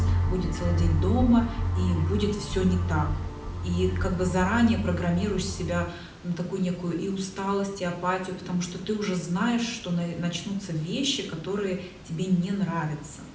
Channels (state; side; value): identical; both; correlation 1.00